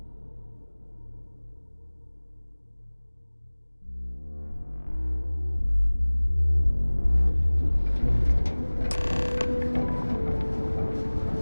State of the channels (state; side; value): inverted; both; correlation -1.00